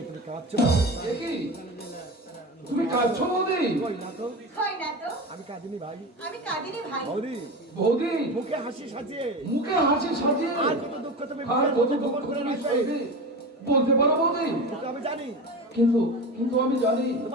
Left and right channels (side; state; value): both; normal; correlation 0.27